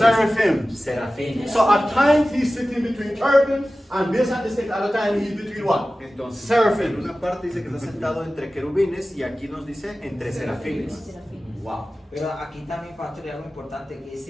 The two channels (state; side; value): normal; both; correlation 0.96